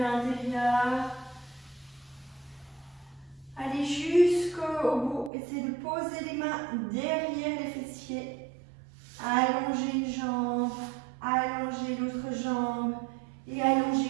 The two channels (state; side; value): drops out; left; at 5.3 s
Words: Allez jusqu'au bout. Essayez de poser les mains derrière les fessiers. Allongez une jambe, allongez l'autre jambe et